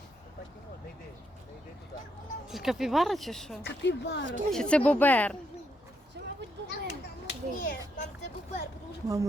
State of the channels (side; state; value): both; normal; correlation 0.78